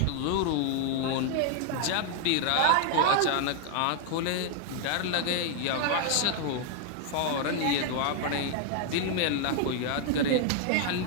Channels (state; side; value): different; both; correlation 0.00